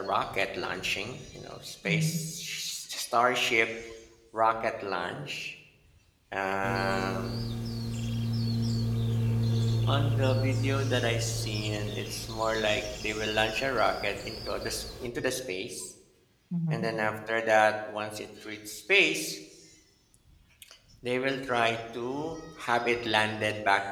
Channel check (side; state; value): both; identical; correlation 1.00